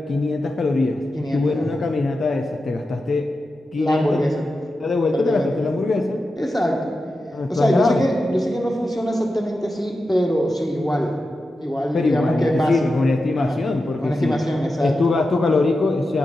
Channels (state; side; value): normal; both; correlation 0.91